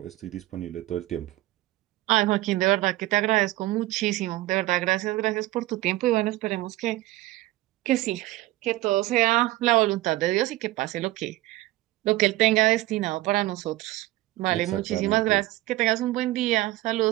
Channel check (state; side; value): quieter; left; 17.7 dB